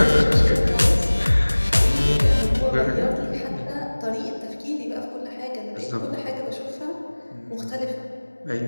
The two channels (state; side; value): inverted; both; correlation -1.00